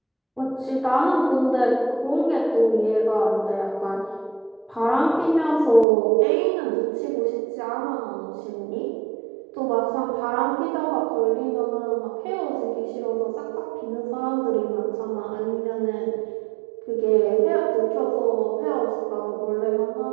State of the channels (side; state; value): left; drops out; at 5.9 s